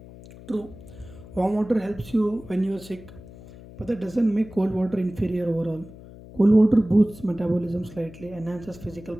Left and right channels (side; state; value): left; noise; hum, 18 dB below the sound